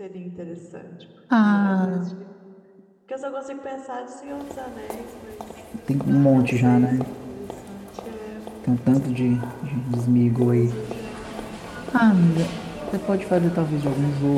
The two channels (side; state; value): both; identical; correlation 1.00